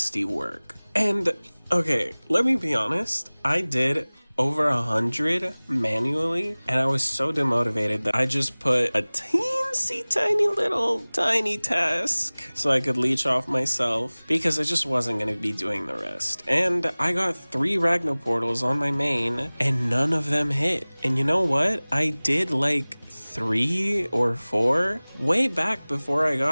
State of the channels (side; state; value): both; inverted; correlation -1.00